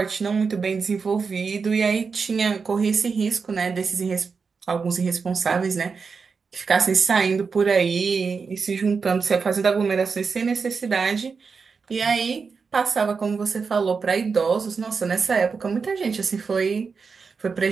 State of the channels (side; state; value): left; quieter; 5.2 dB